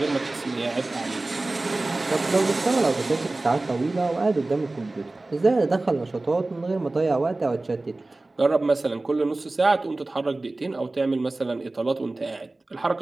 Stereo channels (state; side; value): quieter; left; 3.0 dB